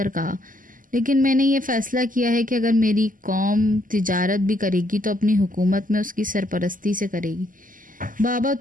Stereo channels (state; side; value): late; left; 0.39 ms